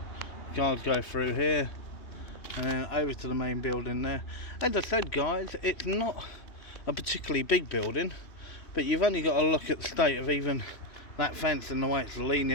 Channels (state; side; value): late; right; 2.8 ms